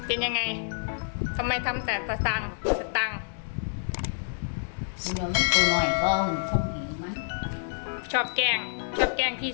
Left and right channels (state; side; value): silent; right; digital silence